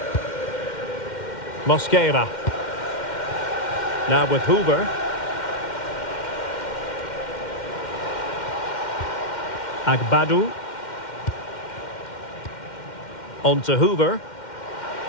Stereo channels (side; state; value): right; late; 2.1 ms